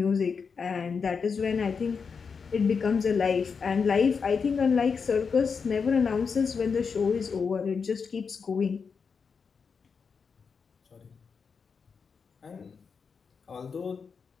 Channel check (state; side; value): quieter; right; 5.7 dB